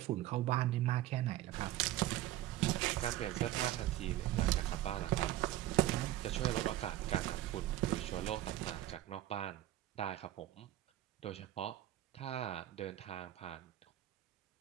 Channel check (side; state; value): left; quieter; 14.1 dB